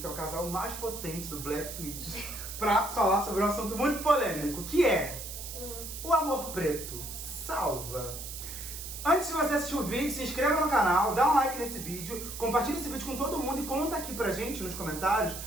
é o casal mais potente do Black Twitch, pra falar sobre um assunto muito polêmico, que é o amor preto salva. Antes de você assistir o vídeo, se inscreva no canal, dá um like nesse vídeo, compartilha esse vídeo com todo mundo e conta aqui pra gente nos comentários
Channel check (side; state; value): right; noise; hiss, 9 dB below the sound